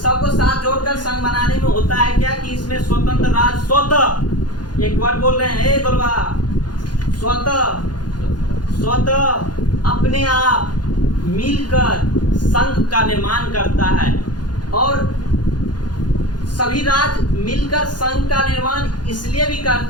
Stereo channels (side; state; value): right; late; 0.70 ms